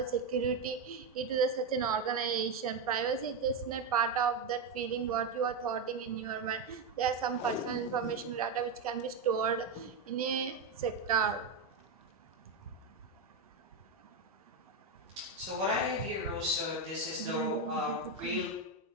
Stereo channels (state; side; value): quieter; left; 4.0 dB